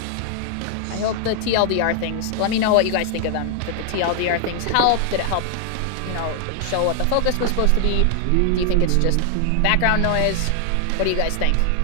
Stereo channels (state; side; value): different; both; correlation 0.00